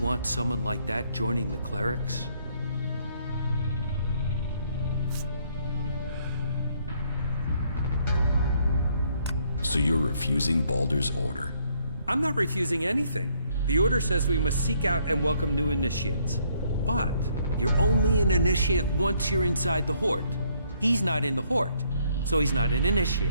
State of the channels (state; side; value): inverted; both; correlation -0.68